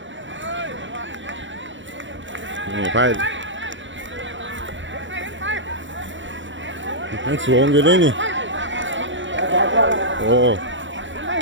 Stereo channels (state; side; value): late; left; 0.55 ms